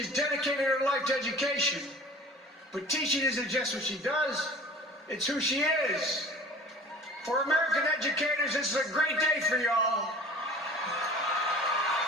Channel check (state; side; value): normal; both; correlation 0.43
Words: dedicated her life to education. But teaching isn't just what she does, It's who she is. For American educators, this is a great day for y'all.